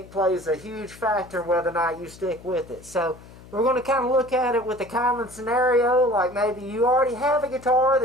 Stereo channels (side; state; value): left; noise; hum, 20 dB below the sound